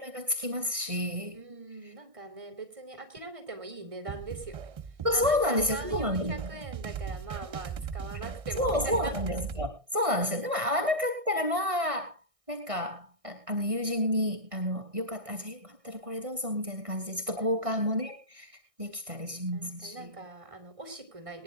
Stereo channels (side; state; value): left; late; 1.6 ms